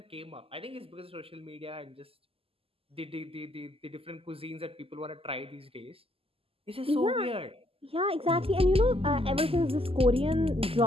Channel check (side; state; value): left; late; 0.28 ms